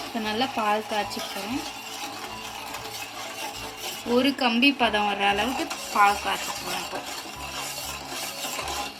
இப்போ நல்லா பால் காய்ச்சி போகிறேன். ஒரு கம்பி பதம் வர்ற அளவுக்கு பால் காய்ச்சி போகிறேன். இப்போ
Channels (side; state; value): both; identical; correlation 1.00